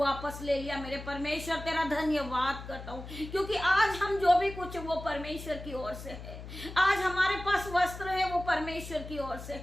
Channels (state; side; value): noise; left; hum, 12 dB below the sound